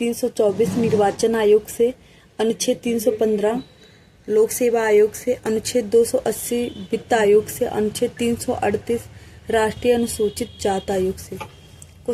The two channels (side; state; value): both; identical; correlation 1.00